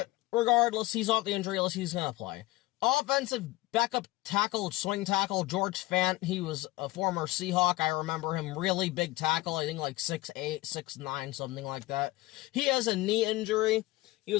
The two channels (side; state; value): right; quieter; 18.8 dB